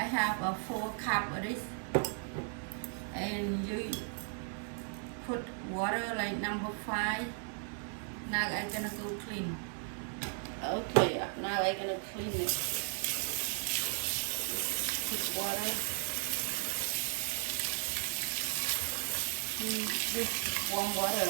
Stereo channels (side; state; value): left; silent; 54 dB below the other